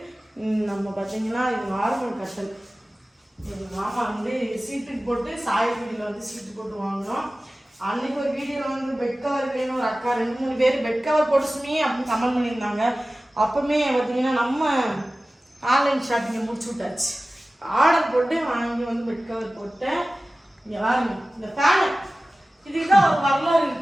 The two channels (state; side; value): normal; both; correlation 0.96